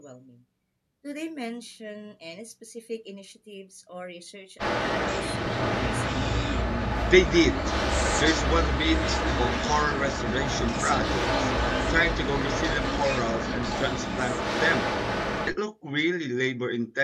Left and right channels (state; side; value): identical; both; correlation 1.00